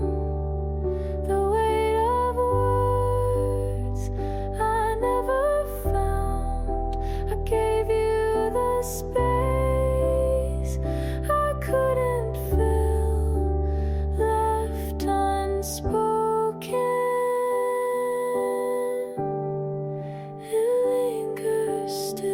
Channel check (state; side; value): identical; both; correlation 1.00